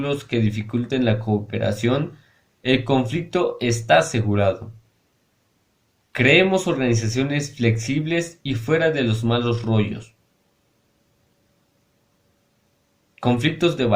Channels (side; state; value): both; identical; correlation 1.00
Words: que dificulten la cooperación, el conflicto está asegurado. Creemos organizaciones flexibles y fuera de los malos rollos. Conflictos de